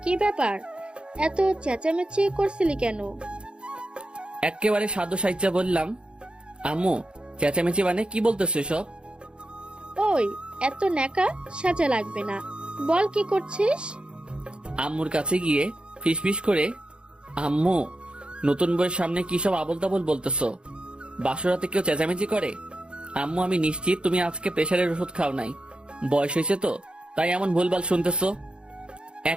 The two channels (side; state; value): left; late; 0.054 ms